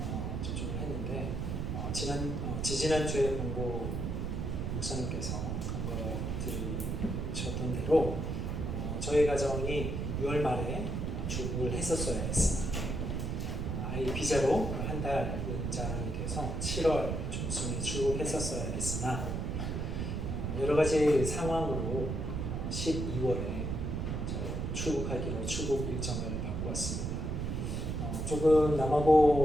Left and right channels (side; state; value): right; noise; rumble, 2 dB below the sound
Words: 접종을 했는데 지지난주에 본고 목사님께서 간거 들으셨던 대로 저희 가정이 6월 말에 출국을 했었어야 했습니다. 아이 비자로 한 달 연장이 돼서 7월 중순에 출국했었어야 했으나 여러 가지 상황으로 12월에 출국하기로 출국 일정을 바꾸었습니다. 조금